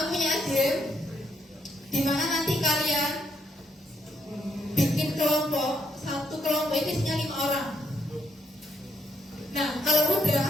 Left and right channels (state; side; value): normal; both; correlation 0.75